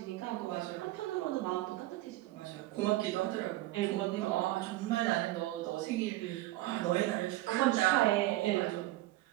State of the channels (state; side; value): quieter; left; 17.0 dB